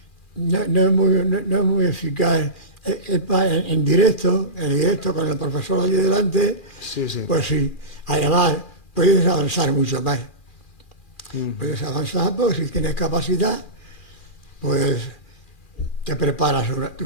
no es muy eficaz. En directo, con el profesor allí delante, Sí, sí. pues sí. Además, puedes avanzar mucho más. Ujú. Puedes avanzar porque si tienes capacidad, pues te preparas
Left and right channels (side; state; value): right; late; 2.4 ms